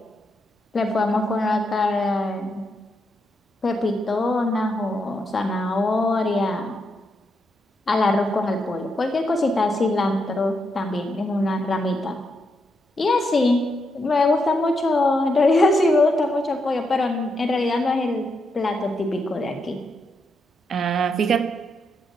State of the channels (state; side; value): normal; both; correlation 0.81